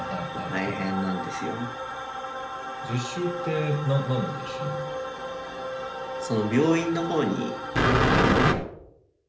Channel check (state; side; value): identical; both; correlation 1.00